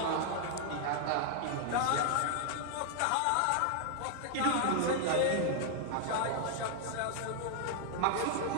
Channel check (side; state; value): both; different; correlation 0.00